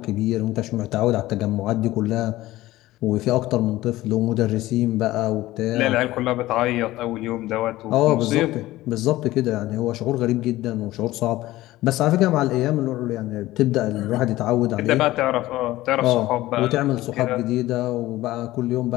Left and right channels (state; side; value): quieter; right; 16.8 dB